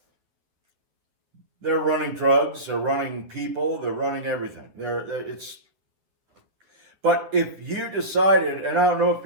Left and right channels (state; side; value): late; left; 10 ms